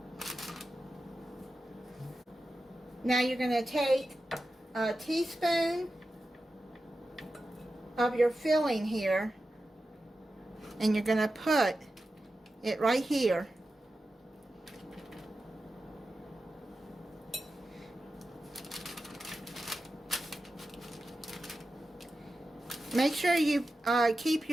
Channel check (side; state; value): both; normal; correlation 0.92